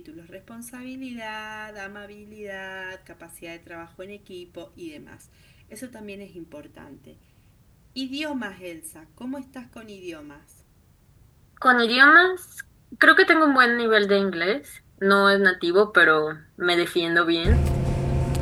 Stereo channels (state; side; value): identical; both; correlation 1.00